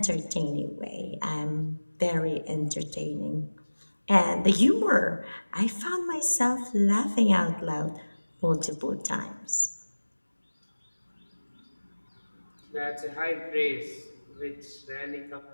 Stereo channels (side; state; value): both; inverted; correlation -1.00